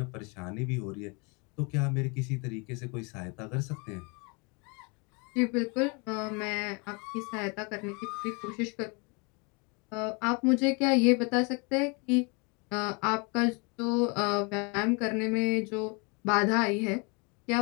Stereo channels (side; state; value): right; quieter; 31.6 dB